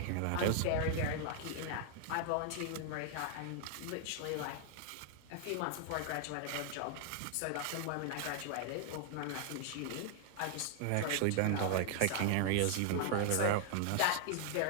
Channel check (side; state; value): both; different; correlation 0.00